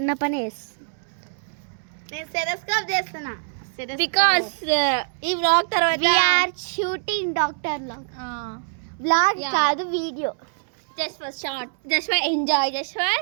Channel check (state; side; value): silent; left; 63 dB below the other